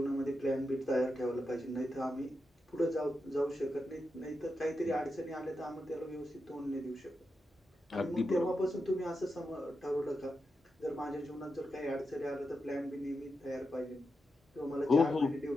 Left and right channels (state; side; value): normal; both; correlation 0.88